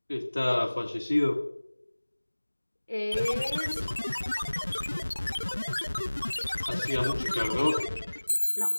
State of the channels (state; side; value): inverted; both; correlation -1.00